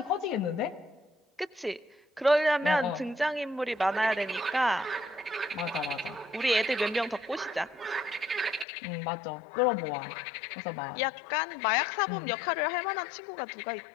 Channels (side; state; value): right; drops out; at 8.7 s